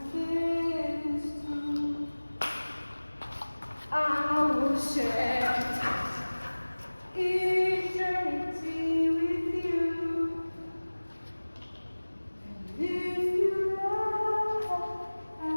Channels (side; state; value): both; inverted; correlation -1.00